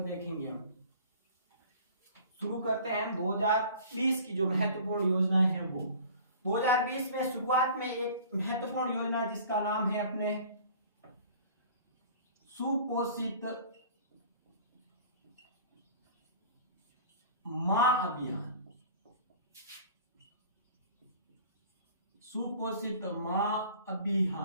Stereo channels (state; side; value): inverted; both; correlation -0.46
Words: देखेंगे हम। शुरू करते हैं हम 2020 की जो महत्वपूर्ण योजनाएं हैं वो। 2020 में शुरुआत में एक महत्वपूर्ण योजना जिसका नाम है अपने सुपोषित मां अभियान। सुपोषित मां